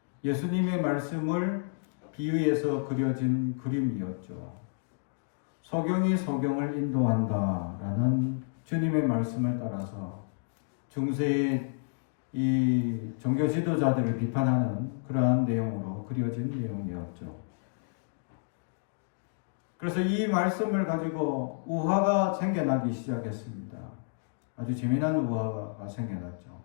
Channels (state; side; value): silent; right; digital silence